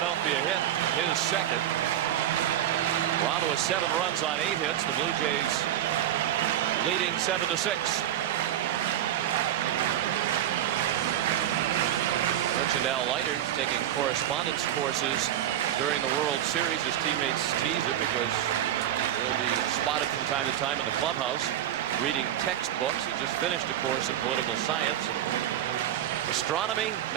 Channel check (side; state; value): left; quieter; 11.4 dB